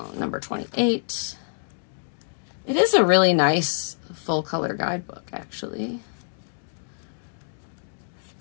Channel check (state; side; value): silent; right; 61 dB below the other